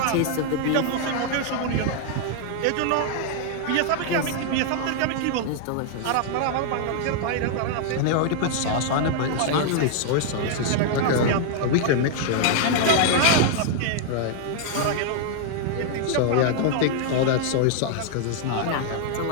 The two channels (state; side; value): different; both; correlation 0.00